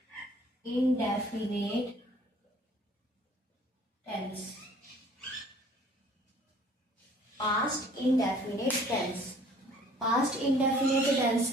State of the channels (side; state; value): both; normal; correlation 0.55